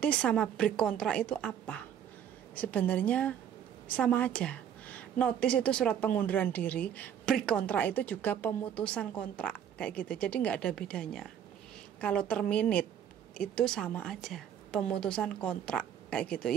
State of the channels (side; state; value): left; quieter; 9.3 dB